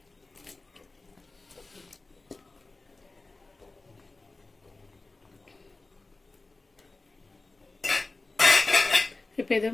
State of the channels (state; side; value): quieter; right; 3.4 dB